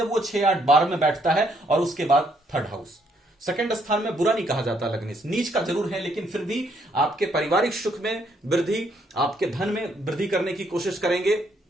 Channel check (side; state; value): both; normal; correlation 0.71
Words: वो 6, 8, 12 में बैठता है और उसके बाद थर्ड हाउस। सेकंड स्थान में बुरा नहीं कहा जाता लग्नेश, नीच का जरूर है लेकिन फिर भी आपके पारिवारिक सुख में वृद्धि, आपके धन में वृद्धि करने की कोशिश करेंगे,